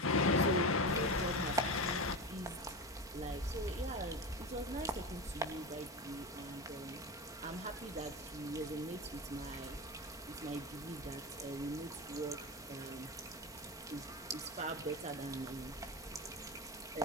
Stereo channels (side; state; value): both; normal; correlation 0.21